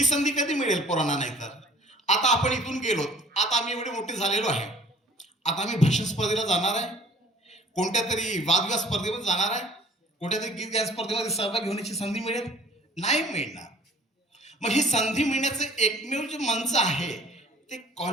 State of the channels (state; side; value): normal; both; correlation 0.52